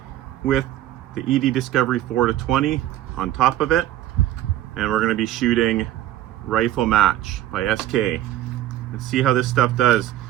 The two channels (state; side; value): quieter; left; 13.6 dB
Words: with the ED Discovery 4-20 on top of it, and we're going to be shooting Rifle Match by SK. Let's see how this stuff does.